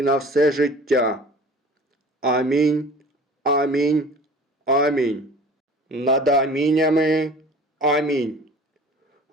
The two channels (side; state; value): both; normal; correlation 0.44